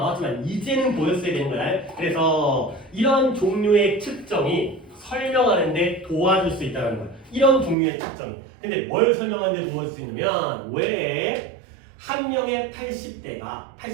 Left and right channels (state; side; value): drops out; left; at 7.8 s